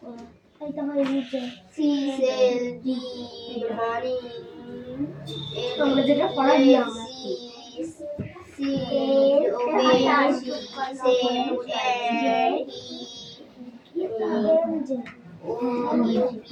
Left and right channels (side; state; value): both; identical; correlation 1.00